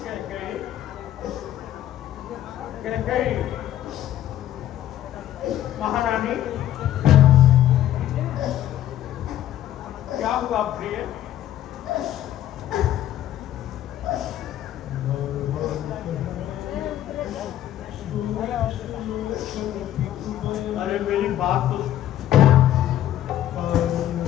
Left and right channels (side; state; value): right; quieter; 12.2 dB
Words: कैकेयी महारानी, क्या हुआ प्रिय? अरे मेरी बात तो